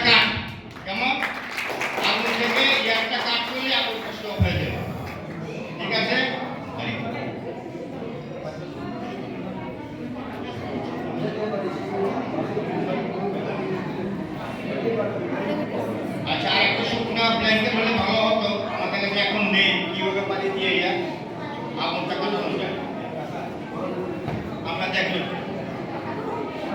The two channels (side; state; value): both; identical; correlation 1.00